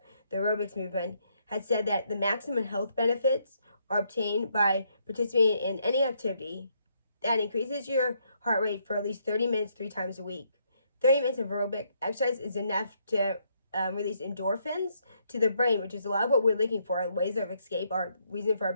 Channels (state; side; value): inverted; both; correlation -0.73